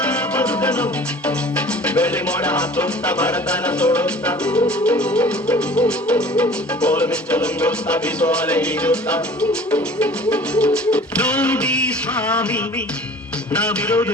ಬದುಕನು ಬೆಳ್ಳಿ ಮೋಡ ಹಾಕುತ್ತ ಬಡತನ ಸೋಡುತ್ತ ಕೋಲು ಮಿಂಚು ನುಂಗುತ್ತ ಬೀಸುವಲೆ ಈಜುತ್ತ ನೋಡಿ ಸ್ವಾಮಿ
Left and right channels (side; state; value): both; normal; correlation 0.46